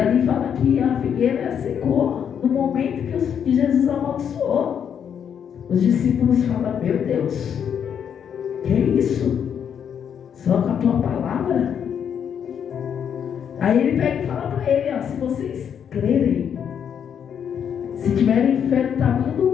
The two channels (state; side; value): quieter; right; 8.1 dB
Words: fala que a figueira secou no momento que Jesus amaldiçoou. Os discípulos falam: meu Deus, que é isso? Só com a tua palavra? Aí ele pega e fala para ele: ó, se vocês crerem, se tiverem fé do tamanho